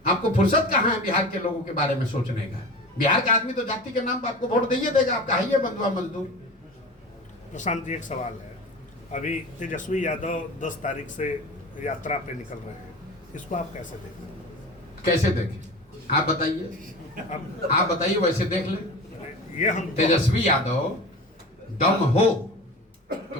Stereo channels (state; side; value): normal; both; correlation 0.33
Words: आपको फुर्सत कहाँ है बिहार के लोगों के बारे में सोचने का? बिहार का आदमी तो जाति के नाम पर आपको वोट दिए देगा, आप कहिए बंधुआ मजदूर। प्रशांत जी एक सवाल है, अभी तेजस्वी यादव 10 तारीख से यात्रा पे निकल रहे हैं, इसको आप कैसे देखें? कैसे देखें? आप बताइए, आप बताइए, वैसे देख ले। ये हम तेजस्वी यादव दम हो